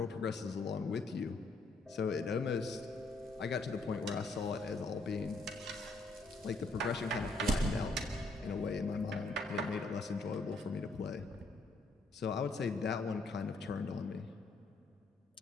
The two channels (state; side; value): quieter; right; 3.0 dB